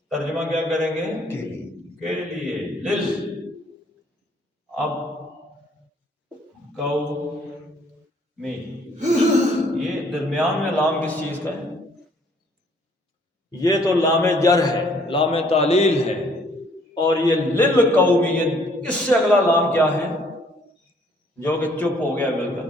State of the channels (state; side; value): normal; both; correlation 0.62